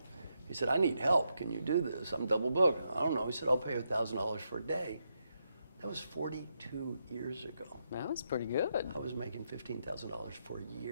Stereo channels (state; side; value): inverted; both; correlation -0.82